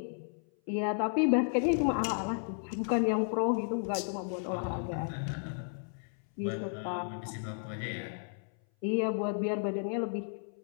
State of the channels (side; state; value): right; silent; 56 dB below the other